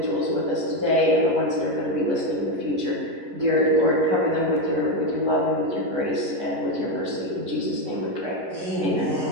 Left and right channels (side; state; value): left; late; 11 ms